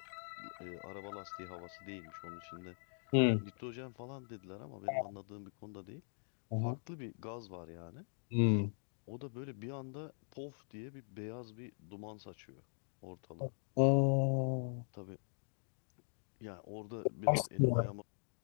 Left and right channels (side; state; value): right; silent; digital silence